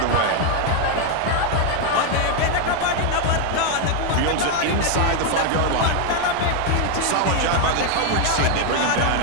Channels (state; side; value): different; both; correlation 0.01